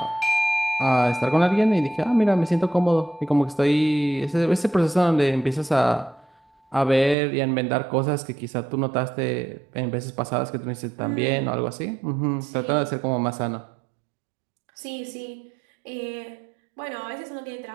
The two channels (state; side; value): drops out; left; at 7.2 s